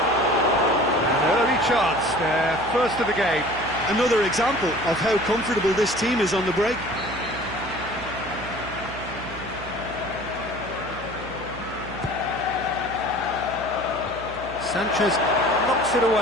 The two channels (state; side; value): noise; right; hum, 14 dB below the sound